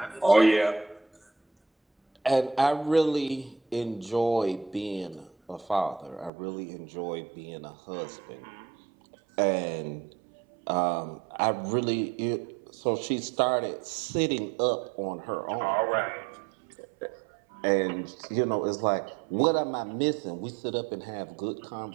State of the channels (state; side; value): drops out; left; at 6.3 s